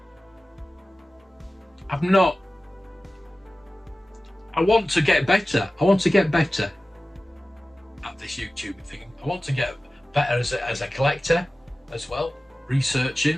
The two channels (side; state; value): both; normal; correlation 0.96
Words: want to get better. I want to get better at this YouTube thing. I want to get better as a collector as well,